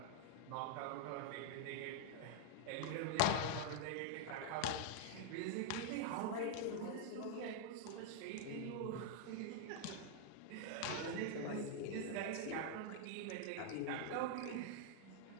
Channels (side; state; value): both; different; correlation -0.01